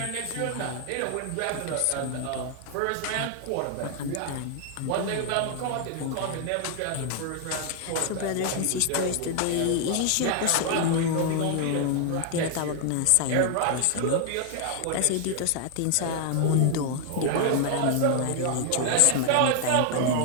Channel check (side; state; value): both; different; correlation 0.00